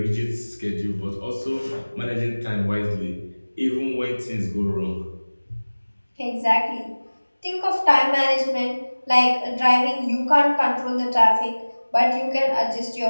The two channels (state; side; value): inverted; both; correlation -1.00